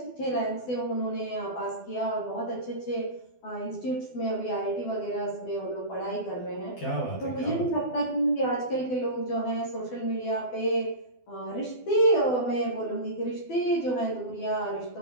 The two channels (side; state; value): right; late; 12 ms